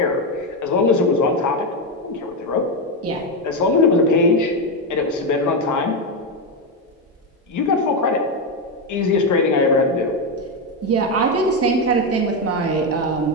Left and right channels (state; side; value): normal; both; correlation 0.08